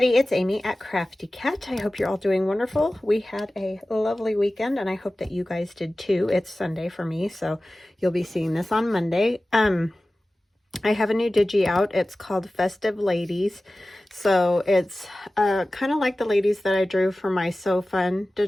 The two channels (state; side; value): normal; both; correlation 0.96